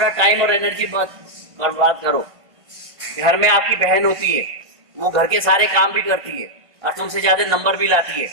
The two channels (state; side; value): late; left; 1.5 ms